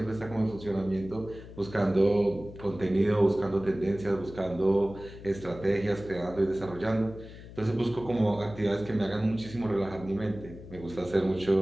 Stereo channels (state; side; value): noise; left; hum, 15 dB below the sound